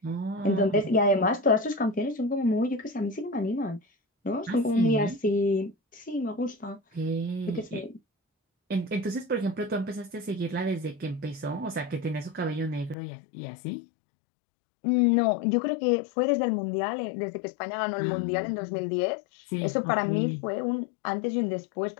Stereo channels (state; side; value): drops out; right; at 13.0 s